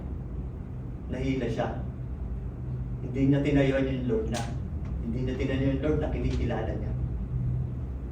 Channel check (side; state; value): both; identical; correlation 1.00